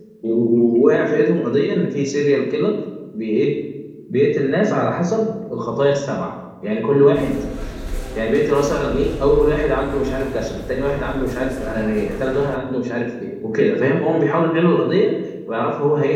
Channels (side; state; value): both; identical; correlation 1.00